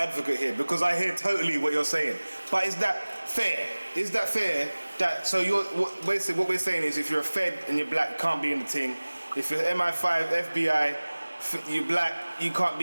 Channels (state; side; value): inverted; both; correlation -1.00